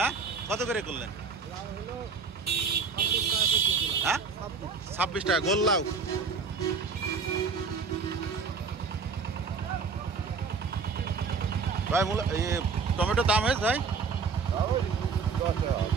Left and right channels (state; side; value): quieter; left; 5.1 dB